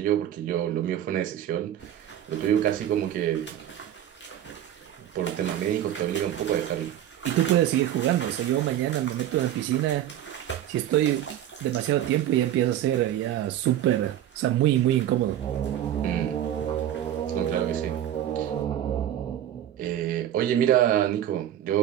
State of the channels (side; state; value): left; quieter; 11.4 dB